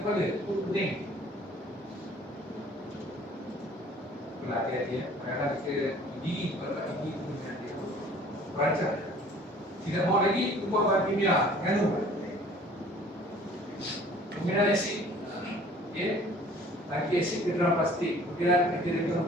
itu pening. Itulah hati-hati ya. Kadang-kadang kita gigi, kalau gigi itu hati-hati. Perancang. Tidak mau lagi, ubah bahan kimia. Nganu. Penggunaan asid. Lagi asid ke dalam plastik. Kemudian kita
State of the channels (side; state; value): both; normal; correlation 0.51